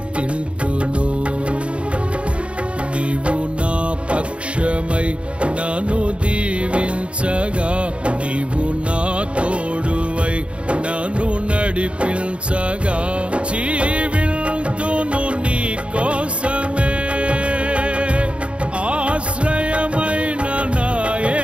నీవు నా పక్షమై నన్ను దీవించగా, నీవు నా తోడువై నన్ను నడిపించగా, జీవింతును నీ కోసమే, ఆశ్రయమైన నా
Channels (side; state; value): left; late; 0.060 ms